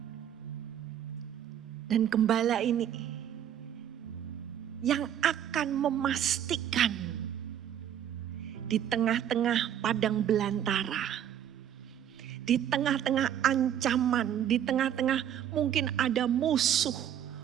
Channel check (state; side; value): quieter; left; 10.0 dB